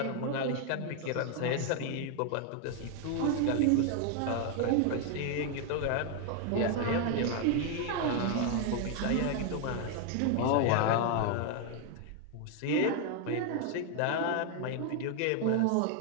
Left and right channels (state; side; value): different; both; correlation 0.01